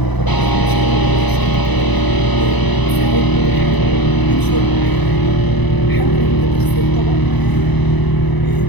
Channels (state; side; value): late; right; 1.0 ms